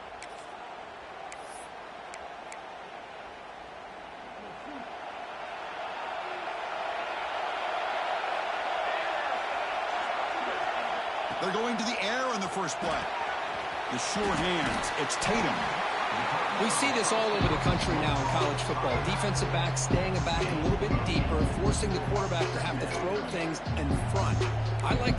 They're going to the air in the first play. The sure hands. It's Tatum. We see this all over the country now in college football. Defensive backs staying back a little bit deeper, forcing the quarterback to have to throw things in front. I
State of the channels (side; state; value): both; identical; correlation 1.00